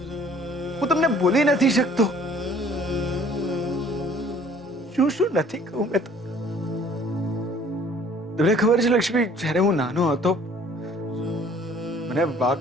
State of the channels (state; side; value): normal; both; correlation 0.54